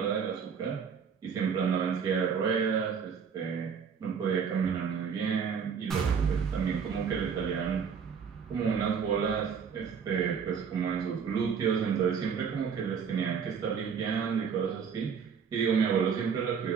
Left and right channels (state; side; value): quieter; left; 6.7 dB